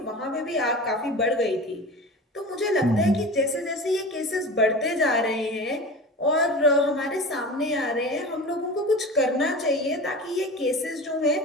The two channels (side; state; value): both; normal; correlation 0.33